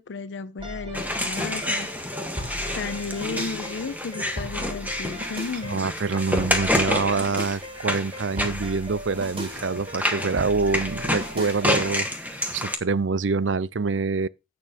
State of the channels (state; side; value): normal; both; correlation 0.20